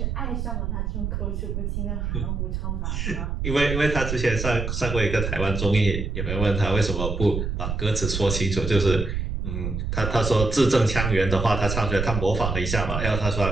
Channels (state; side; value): noise; right; rumble, 2 dB below the sound